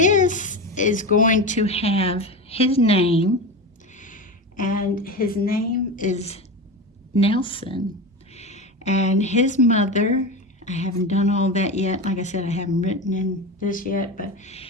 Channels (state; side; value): normal; both; correlation 0.23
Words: is going to have his name, and his name is Nelson. And his mother, I haven't done all that yet. Like I said, I haven't written in this yet, but